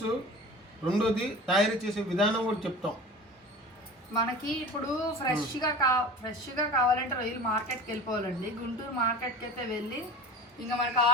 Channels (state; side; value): normal; both; correlation 0.35